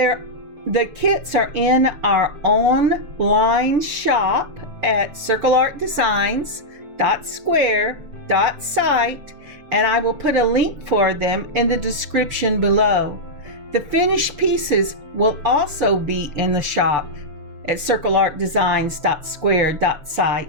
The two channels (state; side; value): late; left; 6.8 ms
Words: kits are in our online shop at circleartdesigns.square.site, and I will put a link for them in the description below. The finished pieces will also be in the shop, at